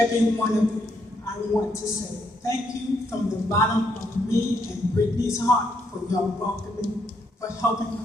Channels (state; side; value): normal; both; correlation 0.75